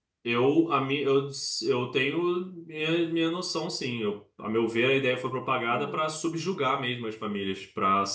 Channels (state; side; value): identical; both; correlation 1.00